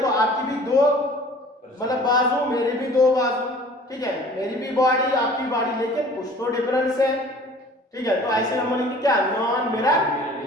आपकी भी दो मतलब बाजू, मेरी भी दो बाजू, ठीक है, मेरी भी बॉडी आपकी बॉडी, लेकिन कुछ तो डिफरेंस है। ठीक है, तो ऐसे हम बोलेंगे क्या, नॉन मिरर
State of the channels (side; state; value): both; normal; correlation 0.48